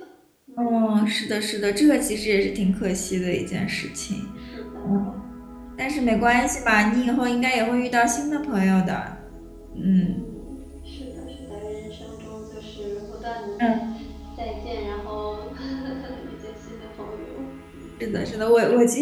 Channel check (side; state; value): both; identical; correlation 1.00